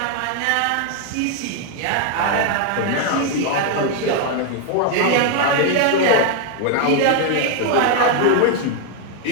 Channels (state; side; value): different; both; correlation 0.01